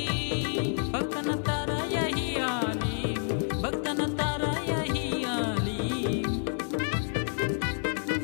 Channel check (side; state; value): right; silent; digital silence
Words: भक्तना तारा यही आली भक्तना तारा यही आली